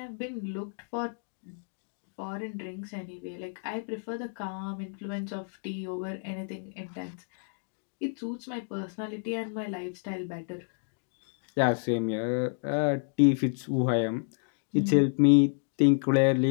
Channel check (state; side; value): silent; right; digital silence